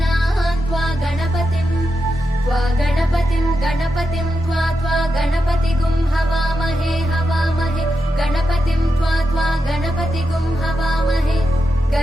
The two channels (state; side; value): normal; both; correlation 0.87